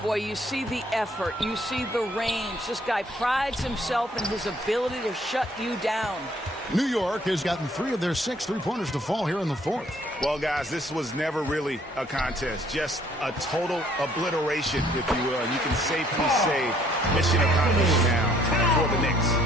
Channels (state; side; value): normal; both; correlation 0.62